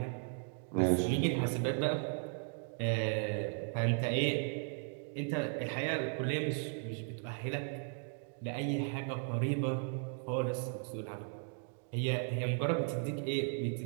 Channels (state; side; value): silent; left; 54 dB below the other